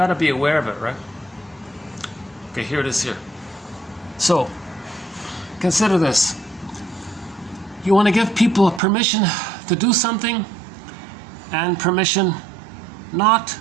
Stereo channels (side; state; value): left; drops out; at 8.8 s